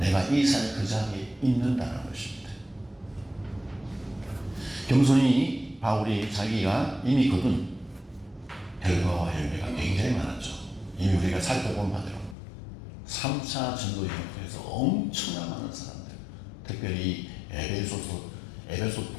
이 살 그 자리에 있는다는 것입니다. 겸손히 바울이 자기가 이미 거둔 결과와 열매가 굉장히 많았죠. 이미 우리가 살펴본 바대로 3차 전도 여행을 통해서 엄청난 많은 사람들, 특별히 에베소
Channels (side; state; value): right; drops out; at 12.4 s